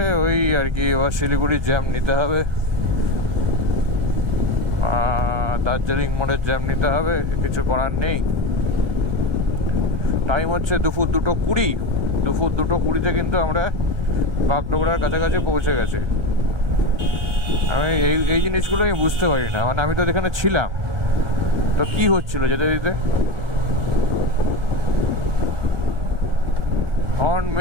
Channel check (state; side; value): late; left; 1.2 ms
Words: ওই আর কি, এবার শিলিগুড়ির জ্যাম নিতে হবে, দার্জিলিং মোড়ের জ্যাম নিতে হবে, কিছু করার নেই। টাইম হচ্ছে দুপুর 2:20। দুপুর 2:20-তে কিন্তু আমরা বাগডোগরার কাছাকাছি পৌঁছে গেছি। আমি এই জিনিসগুলো আমি বুঝতে পারি না, মানে আমি তো এখানে ছিলাম, তো কি হচ্ছিল যেতে দিতে। হর্ন